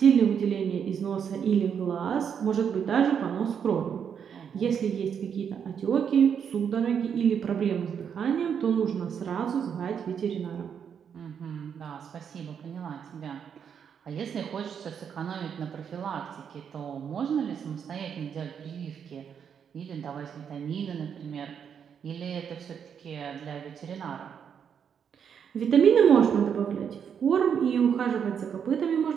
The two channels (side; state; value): left; quieter; 7.6 dB